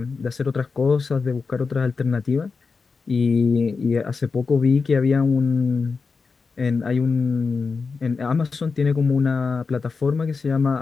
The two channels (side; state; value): right; quieter; 4.7 dB